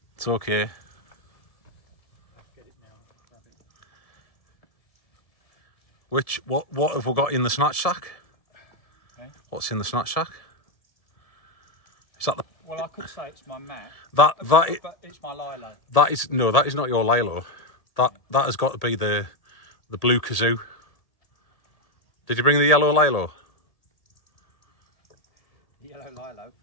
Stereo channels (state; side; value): late; right; 1.7 ms